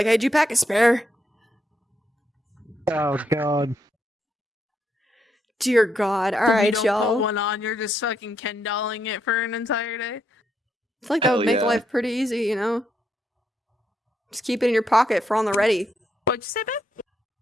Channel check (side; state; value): both; normal; correlation 0.78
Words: hey, did you pack a spare? Oh God. Dear God. If you Alright, don't y'all. put one on, you're just fucking Ken dolling it for an entire day. I feel like that would Hell make yeah. life pretty easy, you know? Just keep it in your pocket for on the ready. What'd you say,